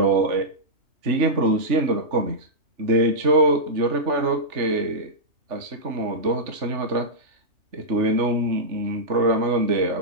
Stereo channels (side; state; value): left; late; 3.4 ms